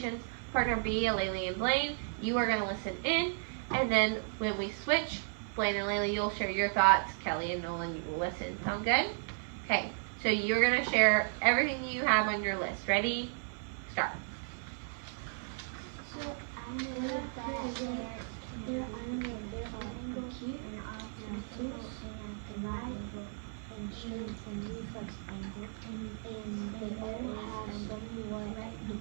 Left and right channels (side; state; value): left; silent; 55 dB below the other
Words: Partner B, Laylee and Blaine, you are going to listen in. And then when we switch, Blaine and Laylee, you'll share your thoughts. Kelly and Nolan, you will listen. Sound good? Okay, so you're going to share everything you have on your list. Ready? Start. So I know that there are angles acute and obtuse and right angle and straight and reflex angle, and they all have somewhat